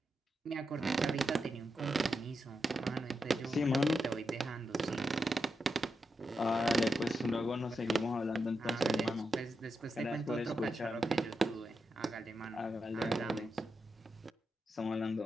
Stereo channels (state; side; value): normal; both; correlation 0.86